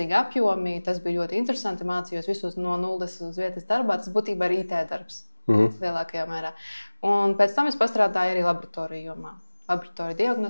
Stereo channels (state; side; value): inverted; both; correlation -1.00